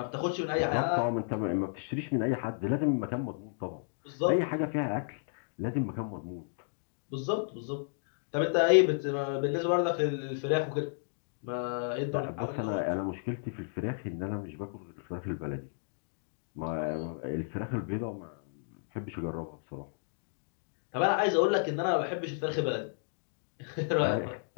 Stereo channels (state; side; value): silent; right; digital silence